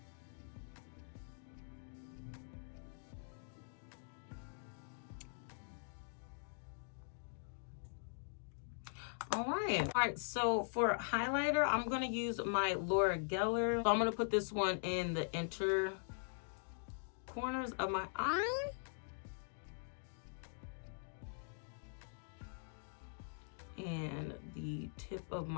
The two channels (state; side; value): silent; right; digital silence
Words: All right, so for highlighter, I'm gonna use my Laura Geller. So I'm gonna put this one in the inner corners of my eye. And the tip of